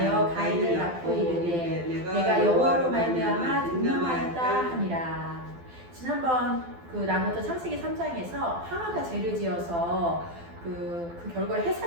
가인을 낳고 이르되 내가 여호와로 말미암아 등명하였다 하니라. 지난번 나눴던 창세기 3장에서 하와가 죄를 지어서 그 결과로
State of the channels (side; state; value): left; late; 12 ms